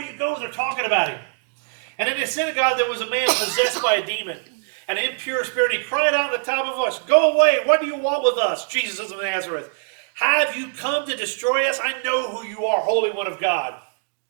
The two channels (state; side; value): silent; left; digital silence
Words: you go, they're talking about him. And in the synagogue, there was a man possessed by a demon, an impure spirit. He cried out at the top of a voice, "Go away! What do you want with us, Jesus of Nazareth? Have you come to destroy us? I know who you are, Holy One of God."